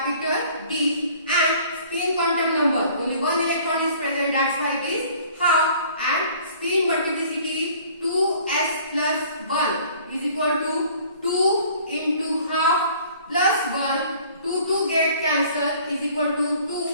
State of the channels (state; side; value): inverted; both; correlation -0.52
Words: D, and spin quantum number only 1 electron is present. That's why it is half, and spin multiplicity 2s plus 1 is equal to 2 into half plus 1. 2 get cancelled is equal to